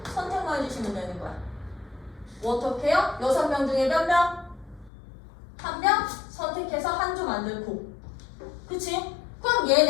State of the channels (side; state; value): right; drops out; at 4.9 s